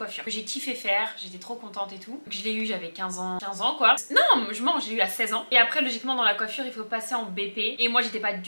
que j'ai kiffé faire, j'étais trop contente et tout. Donc, je l'ai eu, j'avais 15 ans quoi. Non, je mens, j'ai eu à 16 ans. Et après, logiquement, dans la coiffure, il faut passer en BP. Et moi, j'étais pas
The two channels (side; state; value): both; inverted; correlation -1.00